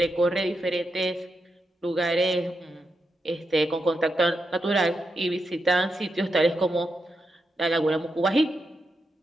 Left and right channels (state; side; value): normal; both; correlation 0.86